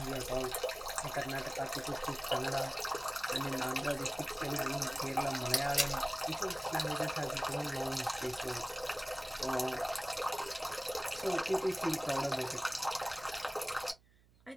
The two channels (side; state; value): right; noise; hum, 29 dB below the sound